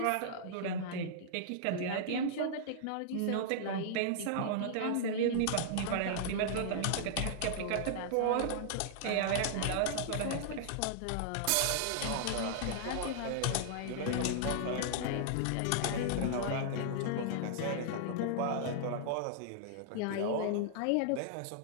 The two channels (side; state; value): both; different; correlation -0.01